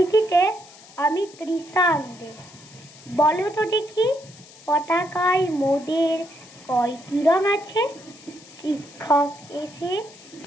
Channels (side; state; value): left; noise; hiss, 21 dB below the sound